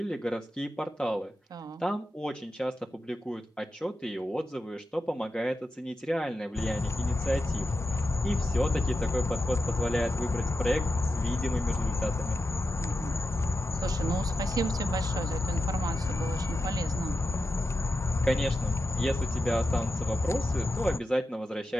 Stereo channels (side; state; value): both; normal; correlation 0.91